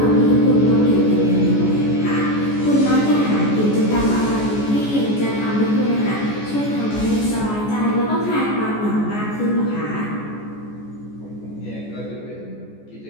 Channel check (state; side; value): late; right; 14 ms